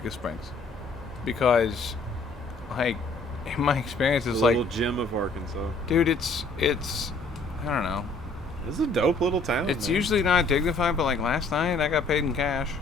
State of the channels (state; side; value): quieter; right; 3.3 dB